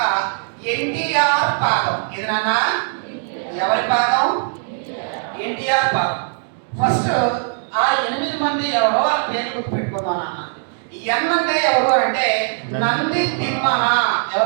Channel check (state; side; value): silent; left; digital silence